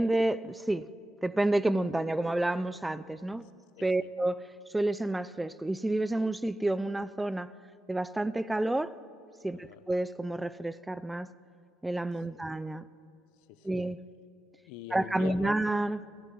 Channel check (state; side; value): normal; both; correlation 0.96